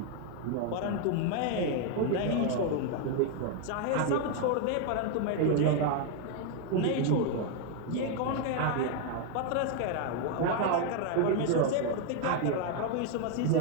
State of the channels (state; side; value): different; both; correlation 0.01